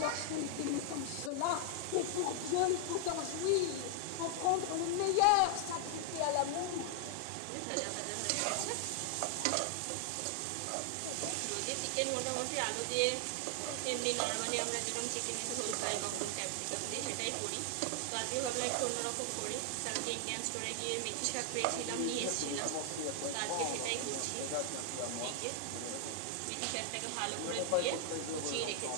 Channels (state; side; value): different; both; correlation 0.00